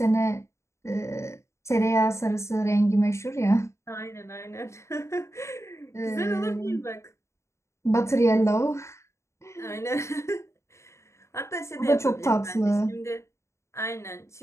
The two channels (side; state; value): right; late; 0.14 ms